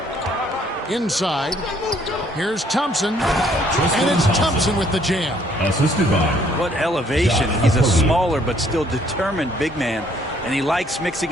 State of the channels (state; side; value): normal; both; correlation 0.64